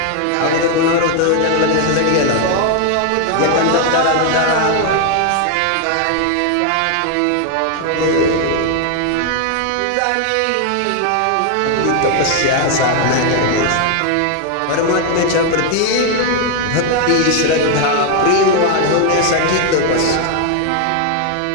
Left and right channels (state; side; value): different; both; correlation 0.01